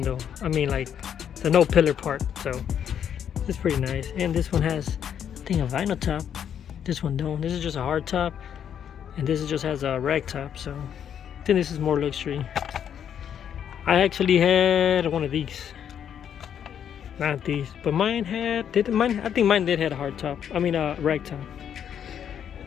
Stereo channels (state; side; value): quieter; right; 8.9 dB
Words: I mean, like the no pillar part. So it's pretty nice. And this one has, I think, a vinyl top. This one don't. This is just a hard top. and this just has a rag top, so I think this is more luxury. I actually had one of these, not these, but mine had, I think mine did have a hard top, I mean a rag top.